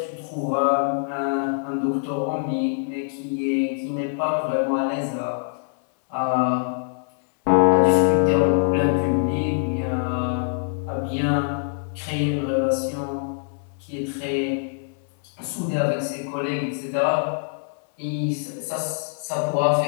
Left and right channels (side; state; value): right; silent; 63 dB below the other